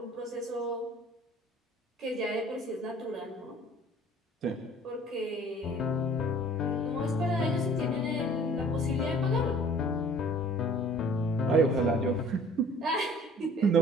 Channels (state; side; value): normal; both; correlation 0.51